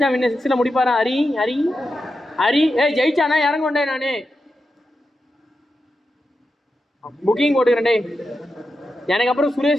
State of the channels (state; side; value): normal; both; correlation 0.89